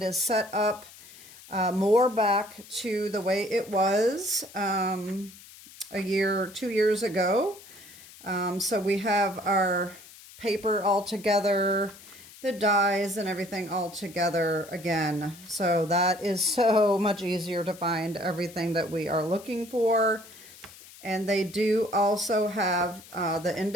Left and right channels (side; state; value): left; noise; hiss, 20 dB below the sound